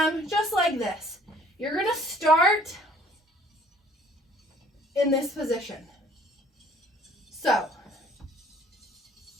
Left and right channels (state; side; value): normal; both; correlation 0.56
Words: just like this. You're gonna start in this position. So,